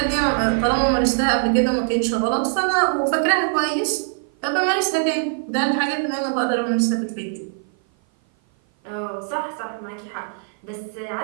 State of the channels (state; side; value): silent; left; 56 dB below the other